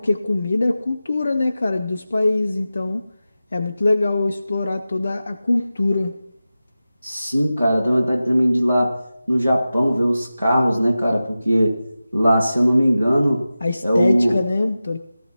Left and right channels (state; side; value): inverted; both; correlation -0.94